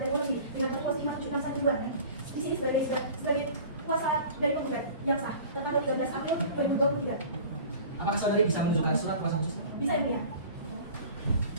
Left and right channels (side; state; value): both; inverted; correlation -0.42